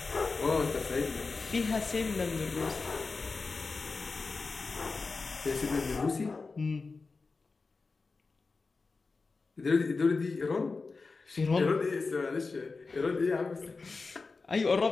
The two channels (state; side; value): quieter; right; 4.1 dB